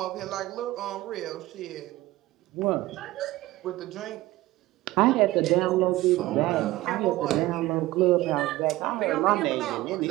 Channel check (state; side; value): quieter; left; 17.6 dB